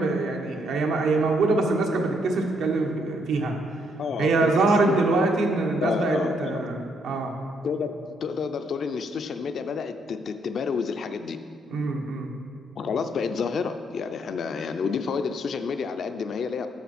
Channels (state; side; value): normal; both; correlation 0.72